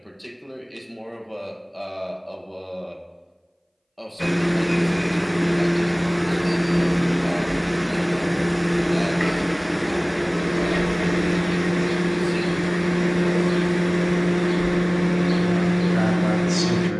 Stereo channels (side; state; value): both; identical; correlation 1.00